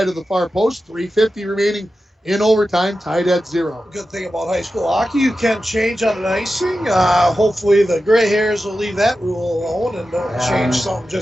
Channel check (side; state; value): both; normal; correlation 0.92